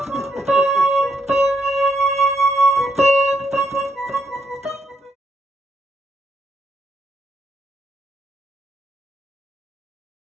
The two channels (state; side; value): normal; both; correlation 0.77